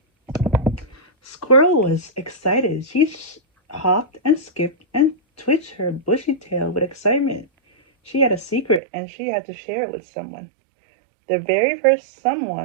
Squirrel was excited. She hopped and skipped and twitched her bushy tail with excitement. She had a secret and she had to share it with someone. The very first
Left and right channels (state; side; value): drops out; left; at 8.8 s